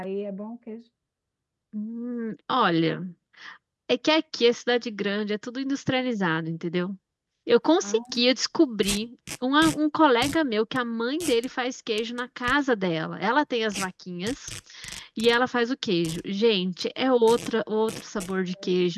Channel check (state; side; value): identical; both; correlation 1.00